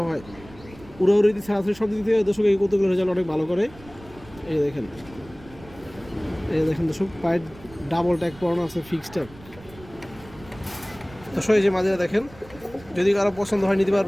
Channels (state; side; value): noise; right; rumble, 21 dB below the sound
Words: হয়। উড়াউড়ি ছাড়াছাড়ি সব দিক থেকে দর্শক এই কবুতরগুলোর রেজাল্ট অনেক ভালো করে। এই দেখেন, এই দেখেন দর্শক পায়ের ডাবল ট্যাগ পরানো আছে, ফিক্সড ট্যাগ দর্শক। এই যে মাদিরা দেখেন, যদি কারো পছন্দ হয় নিতে